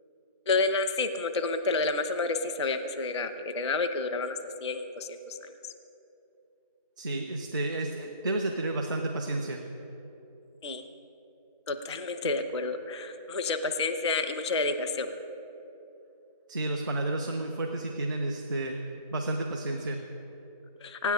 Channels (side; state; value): both; inverted; correlation -0.35